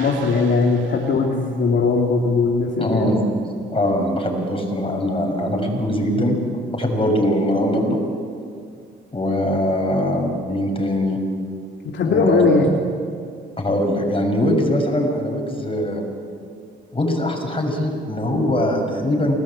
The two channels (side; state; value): both; normal; correlation 0.55